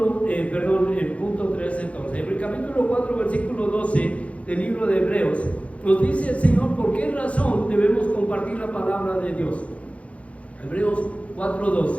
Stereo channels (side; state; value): right; late; 0.064 ms